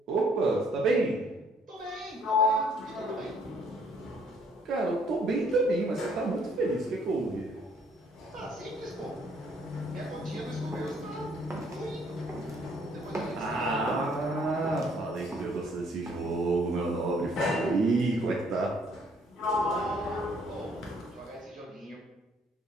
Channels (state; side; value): normal; both; correlation 0.64